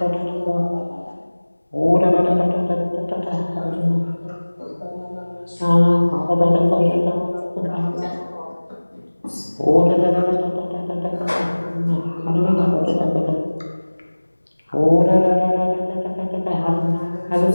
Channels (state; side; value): inverted; both; correlation -1.00